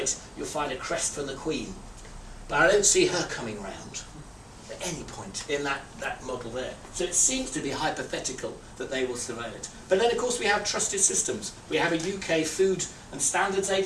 you'll find a crest from the Queen. But I don't see her coming round at any point in that model there. So it seems to be hypothetical that they will surveil it. But then, of course, we have trusted systems. We have a UK Food and Standards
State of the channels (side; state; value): both; identical; correlation 1.00